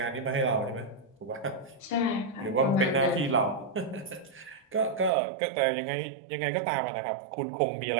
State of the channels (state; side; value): drops out; left; at 5.1 s